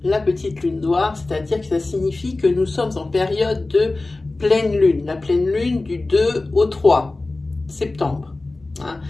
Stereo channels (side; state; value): right; quieter; 3.1 dB